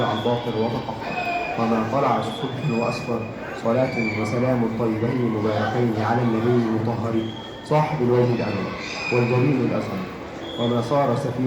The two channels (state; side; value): identical; both; correlation 1.00